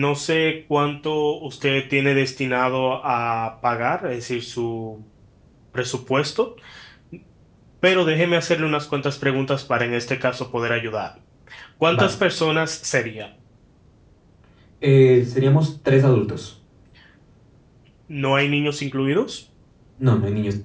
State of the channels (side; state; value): both; identical; correlation 1.00